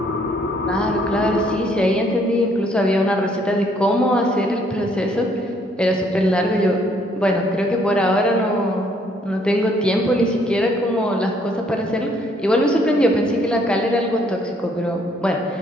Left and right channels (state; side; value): normal; both; correlation 0.66